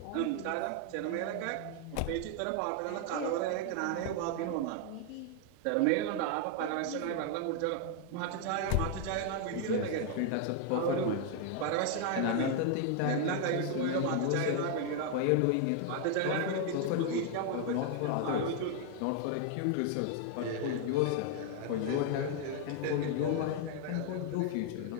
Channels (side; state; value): both; different; correlation 0.00